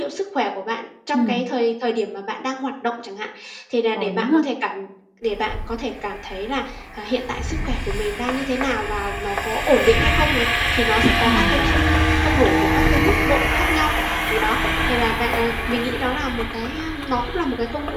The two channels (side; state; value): both; identical; correlation 1.00